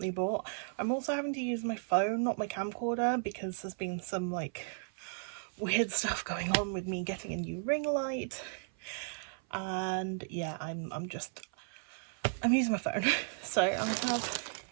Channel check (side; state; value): left; silent; 55 dB below the other